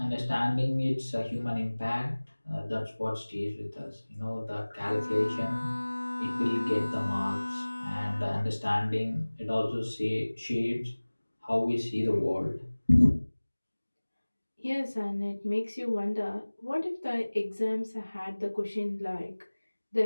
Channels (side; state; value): both; inverted; correlation -1.00